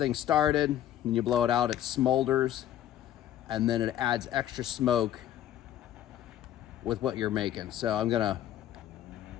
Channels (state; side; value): quieter; right; 11.8 dB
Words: started, and you blow it out, it smolders, and then it adds extra smoke with what you're making. So I'm gonna